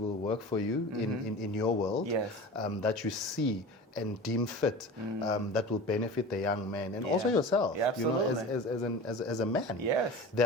will work for you in your world, that you see and deem fit that will benefit the young man and also yourself, Yeah, you know, absolutely. as a man. Yes.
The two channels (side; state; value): both; normal; correlation 0.35